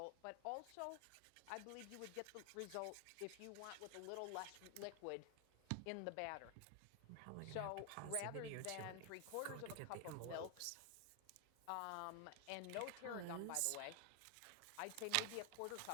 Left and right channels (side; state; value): both; different; correlation 0.00